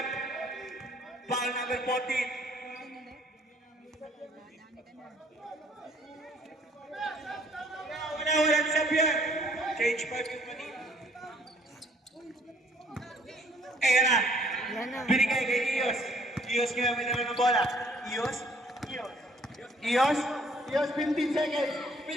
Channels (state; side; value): normal; both; correlation 0.60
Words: Foul number 14. Wala sa Pierre. Change 5 yung kanina. Ayan na. Yan na. Binigay kay Ios. Ios ngayon may naman ng bola. Ios. Ios. Ios, 15 seconds.